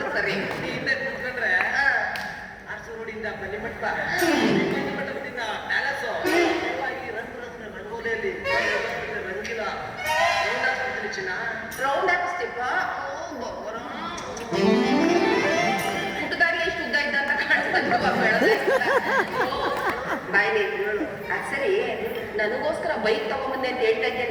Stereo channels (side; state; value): both; identical; correlation 1.00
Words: ಕೂತ್ಕೊಂಡ್ರೆ ಅರ್ಸು ರೋಡಿಂದ ಬನ್ನಿಮಠ ಬನ್ನಿಮಠದಿಂದ ಪ್ಯಾಲೇಸು ಈ ರಂಗೋಲಿಯಲ್ಲಿ ರಂಗಿಲ್ಲ ರೌಂಡ್ ಹಾಕ್ಬಿಡ್ತೀನಿ ಚಿನ್ನ. ರೌಂಡ್ ಹಾಕಿಸ್ತೀಪ ಹುಟ್ಟದಾಗಿ ಎಷ್ಟು ಉದ್ದ ಇದ್ದ ಅಂತ ಬಾಯ್ಲಿ ಅದು ಸರಿ. ನನಗೋಸ್ಕರ ಬೈಕ್ ತಗೊಂಬಂದೆ ಅಂತ ಹೇಳ್ತಾ